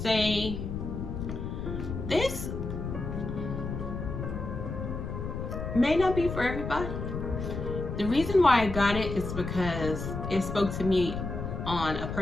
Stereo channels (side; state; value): left; noise; rumble, 5 dB below the sound